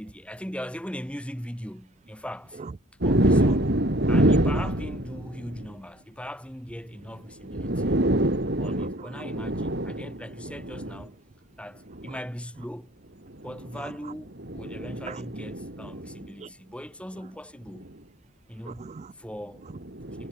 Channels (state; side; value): normal; both; correlation 0.55